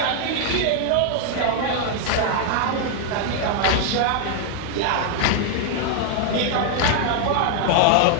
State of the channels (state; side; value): different; both; correlation 0.00